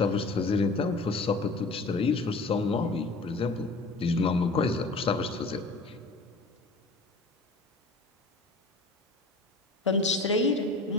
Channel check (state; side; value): quieter; right; 3.3 dB